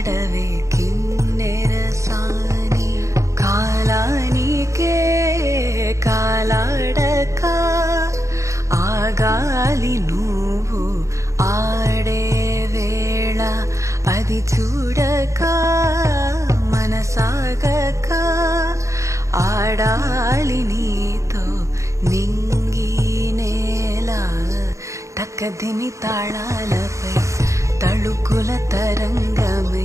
కిన్నెరసాని కాలానికే కాలాడక ఆగాలి నువ్వు ఆడే వేళ అది చూడక మనసాగక ఆడాలి నీతో నింగి నేల తక్కదిమి తాళాలపై తళుకుల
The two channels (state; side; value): late; left; 0.15 ms